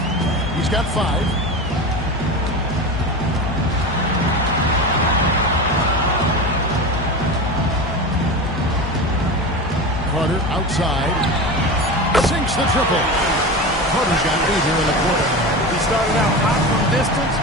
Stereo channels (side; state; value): both; normal; correlation 0.26